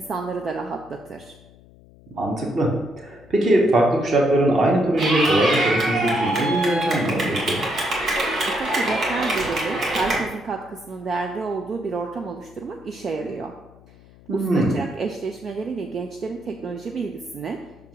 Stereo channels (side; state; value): left; noise; hum, 24 dB below the sound